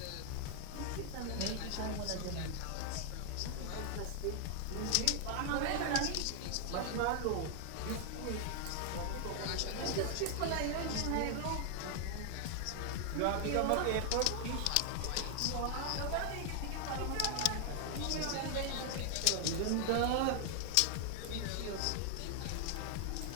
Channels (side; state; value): both; different; correlation 0.00